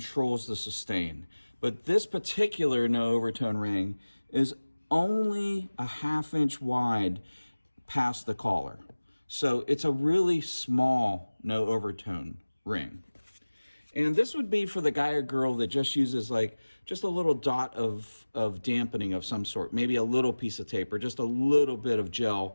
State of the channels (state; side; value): inverted; both; correlation -1.00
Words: the sustain. But this particular no overtone ring is only a 1/2 inch wide past the collar. So it's a really small no overtone ring. And this would be for the guy or girl that just uses just a little dot of dampening of some sort, maybe a little piece of tape or just a little bit of